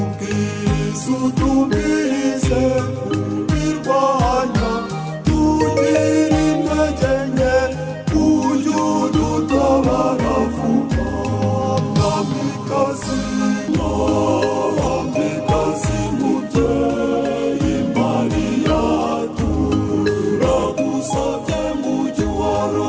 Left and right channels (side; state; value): both; identical; correlation 1.00